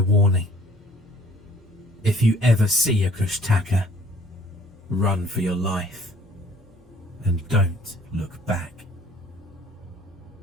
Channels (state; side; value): normal; both; correlation 0.55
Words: warning. If you ever see a Kushtaka, run for your life and don't look back.